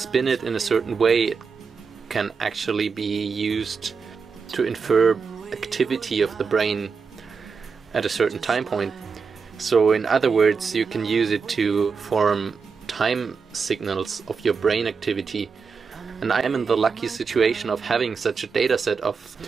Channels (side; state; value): left; quieter; 5.4 dB